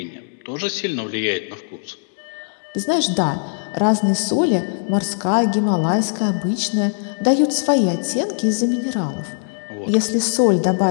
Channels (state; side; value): silent; right; digital silence